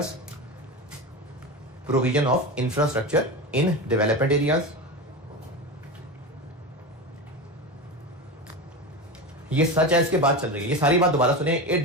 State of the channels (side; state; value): both; normal; correlation 0.23